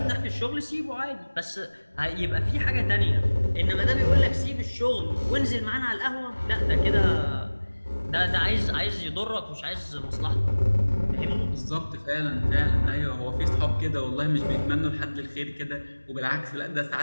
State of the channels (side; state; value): both; inverted; correlation -1.00